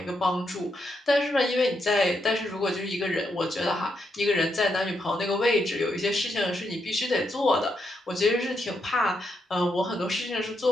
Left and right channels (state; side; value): normal; both; correlation 0.80